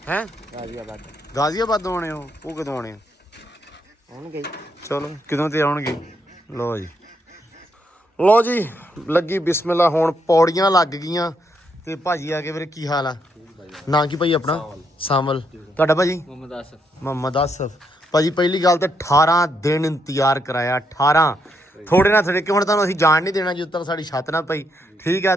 ਹੈ। ਗਾਜ਼ੀਆਬਾਦ ਆਉਣੇ ਉਹ ਕਦੋਂ ਆਉਣੇ ਹੋਣਗੇ ਚਲੋ ਕਿਦੋਂ ਤੇ ਆਉਣਗੇ। ਲੋ ਜੀ ਲੱਗੀ ਬਿਸਮਿਲ੍ਲਾ। ਹੁਣ ਪੌੜੀਆਂ ਲੱਗ ਗਈਆਂ ਤੇ ਭਾਜੀ ਆ ਕੇ ਵੀਰੇ ਕੀ ਹਾਲ ਆ? ਨਾਂ ਕੀ ਭਾਈ ਆਪਣਾ? ਸਾਮਲ। ਤੁਹਾਡਾ ਭਾਜੀ? ਮੁਹੰਮਦ ਆਸਫ। ਭਾਜੀ ਪਹਿਲੀ ਗੱਲ ਤੇ 18 ਦਿਨ ਇੰਤਜ਼ਾਰ ਕਰਾਇਆ। 18 ਥੋੜੇ ਨਾ ਥੋੜੇ ਕਿ ਹੁਣ ਤੁਹਾਨੂੰ ਅਸੀਂ ਜਾਣ ਨਹੀਂ ਦੇਣਾ ਜਦੋਂ ਤੱਕ ਸਾਡੀ ਛੱਤ ਨਾ ਪਈ। ਠੀਕ ਆ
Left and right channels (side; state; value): both; normal; correlation 0.77